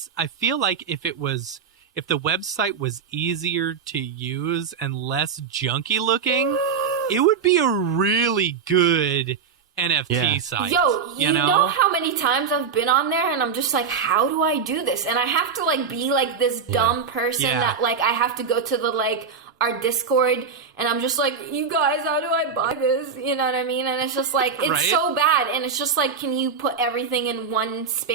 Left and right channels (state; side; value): quieter; left; 6.0 dB